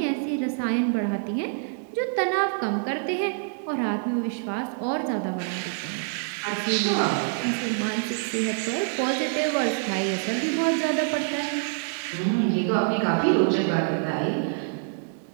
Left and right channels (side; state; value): left; silent; 61 dB below the other